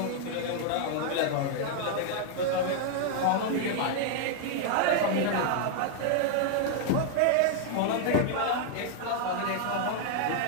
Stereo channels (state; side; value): different; both; correlation 0.00